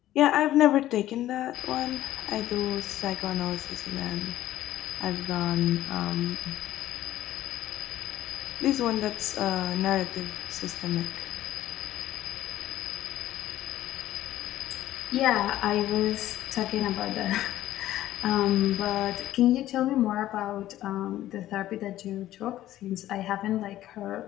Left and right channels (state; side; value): quieter; right; 13.9 dB